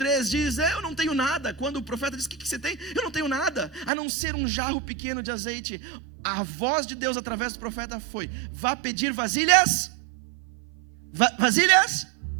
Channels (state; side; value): drops out; left; at 3.9 s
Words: diz, eu não tenho nada. Quando o profeta diz, o que você tem? Eu não tenho nada, a não ser um jarro pequeno de azeite. A voz de Deus através do profeta foi, vá pedir vasilhas, vasilhas